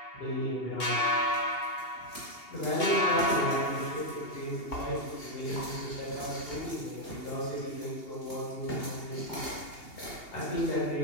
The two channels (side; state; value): right; late; 2.8 ms